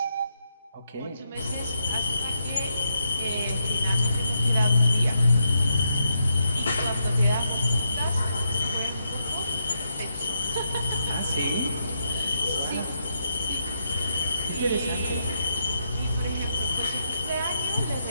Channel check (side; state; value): both; inverted; correlation -0.81